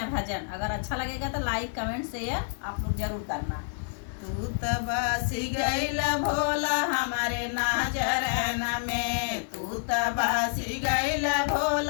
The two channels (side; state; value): right; silent; digital silence